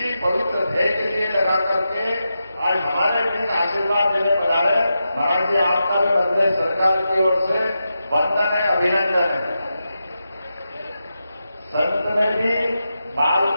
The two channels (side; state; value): both; inverted; correlation -0.89